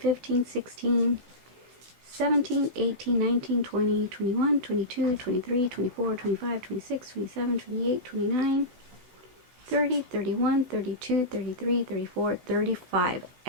16, 17, 18, 19, 20, 21, 22, 23, 24, 25, 26, 27, 28, 29, 30, 31, 32, 33, 34, 35.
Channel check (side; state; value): left; late; 16 ms